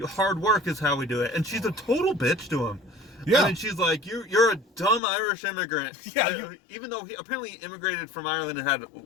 hard work is how we do it. And she's a total bitch to him. Yeah. I mean, she's like, you're a dumb Irish immigrant. Yeah. Even though he apparently immigrated from Ireland and had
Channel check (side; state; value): right; drops out; at 5.0 s